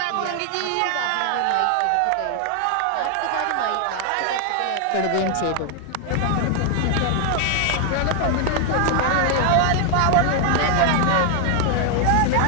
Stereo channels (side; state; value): both; different; correlation 0.00